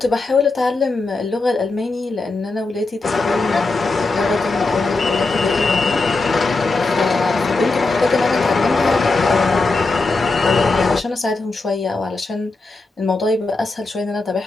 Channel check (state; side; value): quieter; right; 3.5 dB